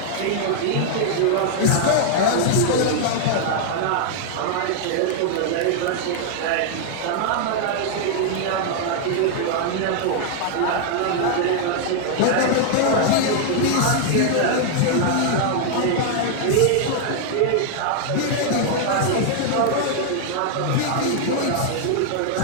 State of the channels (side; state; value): both; different; correlation -0.01